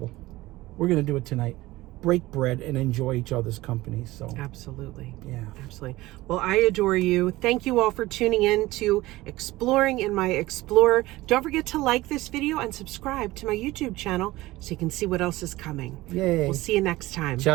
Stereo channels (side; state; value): left; quieter; 18.5 dB